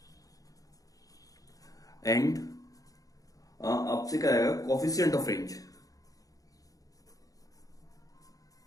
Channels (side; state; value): right; late; 0.17 ms